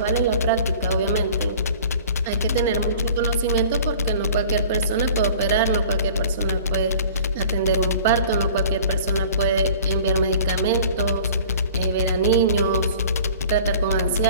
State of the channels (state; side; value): inverted; both; correlation -0.45